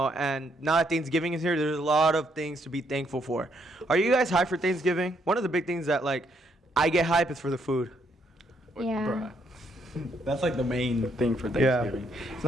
and now that Thanksgiving is here, there's a lot of things to be thankful for. Are you guys hyped for Thanksgiving? One of the big things that, like, I get hype is for the food. Yeah. Bruh. That's like the main thing for Thanksgiving. It's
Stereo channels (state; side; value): normal; both; correlation 0.73